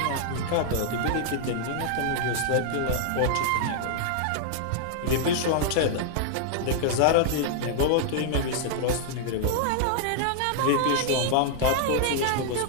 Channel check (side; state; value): both; different; correlation -0.01